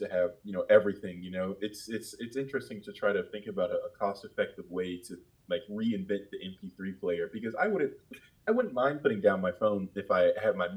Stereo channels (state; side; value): identical; both; correlation 1.00